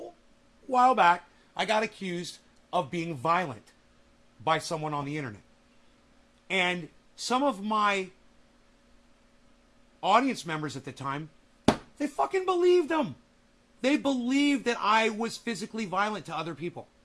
while back, I got accused of being violent by someone on the internet. And some of my audience members at the time, they fucking believed them. They believed that I was physically violent to other people.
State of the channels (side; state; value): both; identical; correlation 1.00